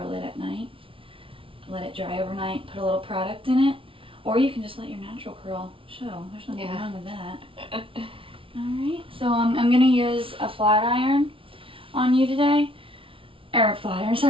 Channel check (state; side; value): late; left; 0.26 ms